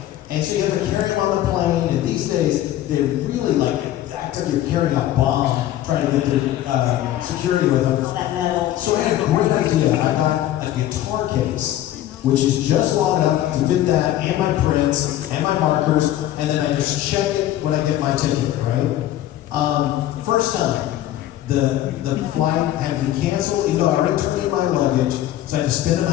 And so you have to carry them on the plane. And these days, they're really like act like you're carrying a bomb, trying to get the security with them. All that metal. So I had a great idea. I got a guitar case, which is just long enough to fit that and my prints and my markers, and then I just check it when I get my ticket, right? First time, the flight had to be canceled, even though I already turned in my luggage, so I had to spend the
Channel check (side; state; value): right; quieter; 13.2 dB